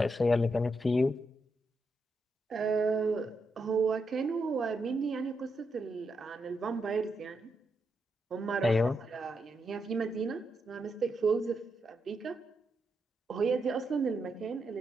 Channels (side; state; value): both; normal; correlation 0.83